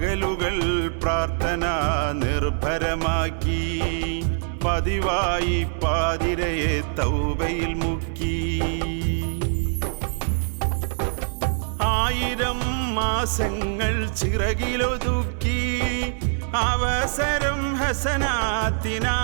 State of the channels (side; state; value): left; silent; 63 dB below the other